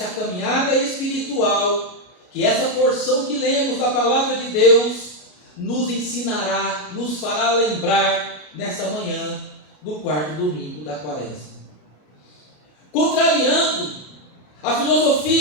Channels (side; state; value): right; late; 33 ms